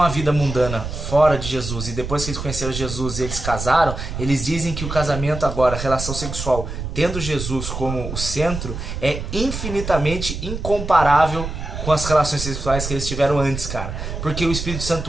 vida mundana fora de Jesus e depois que eles conheceram Jesus e eles casaram, eles dizem que o casamento agora, a relação sexual, tendo Jesus como o centro, é infinitamente incomparável com as relações sexuais que eles tiveram antes, cara. Porque o Espírito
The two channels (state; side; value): noise; right; rumble, 6 dB below the sound